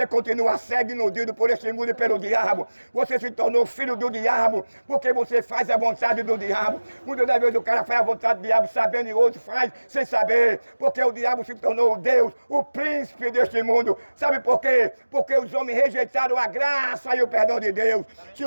continua cego e iludido por este mundo e pelo diabo. Você se tornou filho do diabo porque você faz a vontade do diabo. Muitas das vezes o cara faz a vontade do diabo sabendo e outro faz sem saber. Porque o diabo se tornou o Deus, o príncipe deste mundo. Sabe por quê? Porque os homens rejeitaram a graça e o perdão de Deus. Se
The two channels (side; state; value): both; inverted; correlation -1.00